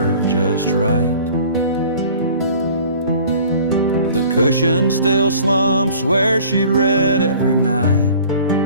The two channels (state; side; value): inverted; both; correlation -0.49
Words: just right. The cushion still slumps where she'd read every night.